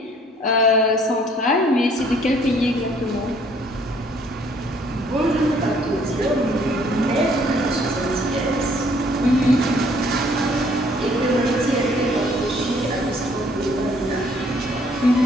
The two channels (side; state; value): both; normal; correlation 0.61